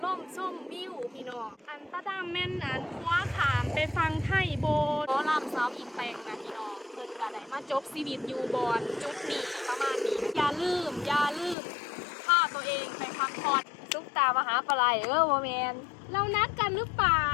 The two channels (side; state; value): right; drops out; at 11.6 s